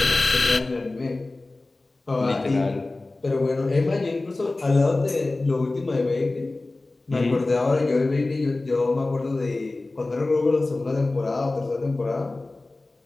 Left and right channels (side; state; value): right; quieter; 3.1 dB